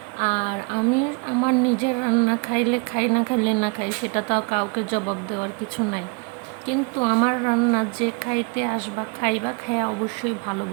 আর আমি আমার নিজের রান্না খাইলে খাই, না খাইলে না খাই, সেটা তো কাউকে জবাব দেওয়ার কিছু নাই। কিন্তু আমার রান্না যে খাইতে আসবা খাইবা, খাইয়া অবশ্যই ভালো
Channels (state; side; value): quieter; left; 33.2 dB